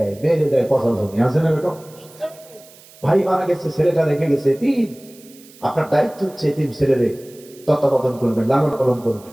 মেয়েদের দেয় 50 জমি। আছে না এরকম? ভাই মারা গেছে, ছেলেটা রেখে গেছে 3। আপনার দায়িত্ব হচ্ছে 3 ছেলেরে তত্ত্বাবধান করবেন, লালন পালন করবেন।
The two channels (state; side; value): noise; right; hiss, 24 dB below the sound